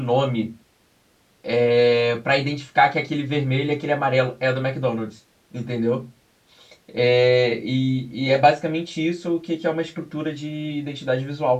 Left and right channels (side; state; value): both; identical; correlation 1.00